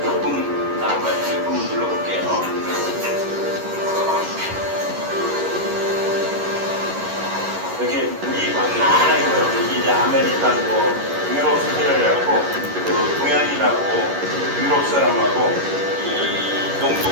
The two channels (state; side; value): late; left; 11 ms